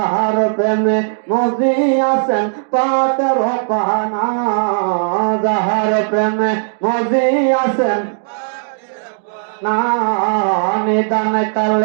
প্রেমে মজিয়াছেন পাক রব্বানা যাহার প্রেমে মজিয়াছেন না নিদান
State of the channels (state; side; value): silent; left; digital silence